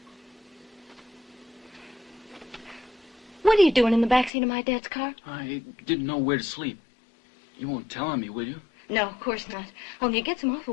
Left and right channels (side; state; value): right; drops out; at 4.3 s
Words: What are you doing in the backseat of my dad's car? I didn't know where to sleep. You won't tell on me, will you? No, of course not. Only you get some